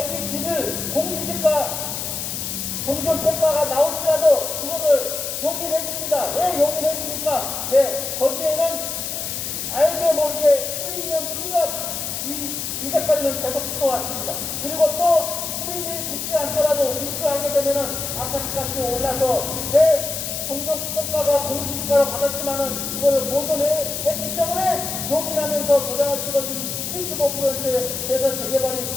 집을 공시지가 공정평가가 나올지라도 그거를 용인해 줍니다. 왜 용인해 줍니까? 네, 거기에는 알게 모르게 프리미엄 투자 이제까지는 계속 붙어왔습니다. 그리고 또 프리미엄이 붙지 않더라도 입주하게 되면은 아파트 값이 올라서 내 공정평가가 공시지가로 받았지만은 그거를 보존했기 때문에 용인하면서 도장을 찍어준 75%에서 재개발이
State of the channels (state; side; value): noise; left; hiss, 4 dB below the sound